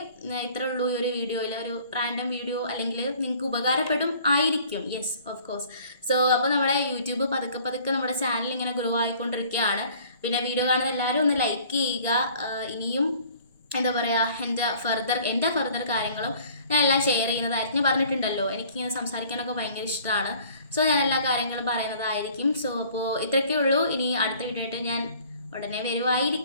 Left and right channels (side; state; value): both; inverted; correlation -0.53